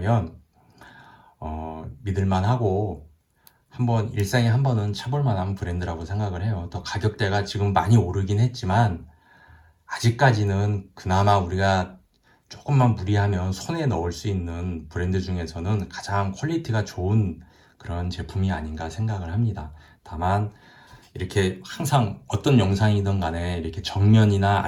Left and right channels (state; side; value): identical; both; correlation 1.00